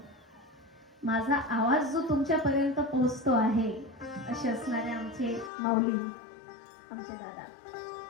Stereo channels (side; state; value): right; drops out; at 5.5 s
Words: माझा आवाज जो तुमच्यापर्यंत पोहोचतो आहे असे असणारे आमचे माऊली, आमचे दादा,